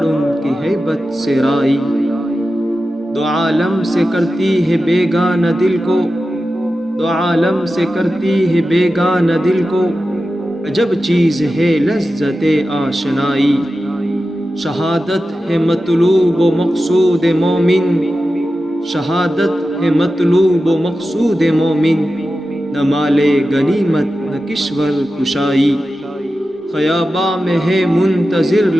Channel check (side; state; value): both; normal; correlation 0.93